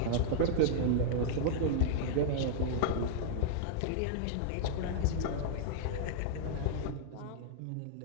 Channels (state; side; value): different; both; correlation -0.01